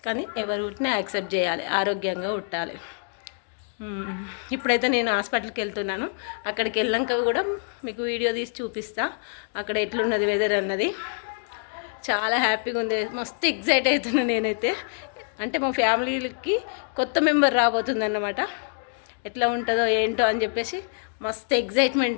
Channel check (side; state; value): right; silent; 61 dB below the other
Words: కానీ ఎవరు పుట్టినా యాక్సెప్ట్ చేయాలి, ఆరోగ్యంగా పుట్టాలి. ఇప్పుడైతే నేను హాస్పిటల్కి వెళ్తున్నాను. అక్కడికి వెళ్ళాక కూడా మీకు వీడియో తీసి చూపిస్తా, అక్కడ ఎట్లున్నది వెదర్ అన్నది. చాలా హ్యాపీగా ఉంది, మస్తు ఎగ్జైట్ అవుతున్నా నేనైతే. అంటే మా ఫ్యామిలీకి కొత్త మెంబర్ రాబోతుంది అన్నమాట. ఎట్లా ఉంటుందో ఏంటో అని చెప్పేసి మస్తు